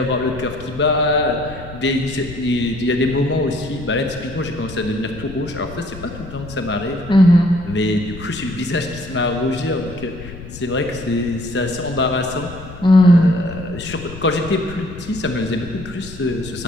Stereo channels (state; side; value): noise; left; rumble, 13 dB below the sound